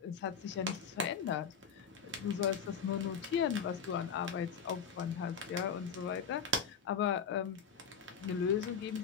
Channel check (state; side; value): quieter; right; 6.5 dB